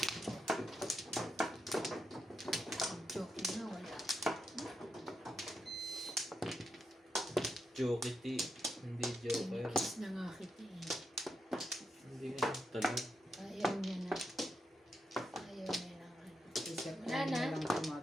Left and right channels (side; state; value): both; normal; correlation 0.84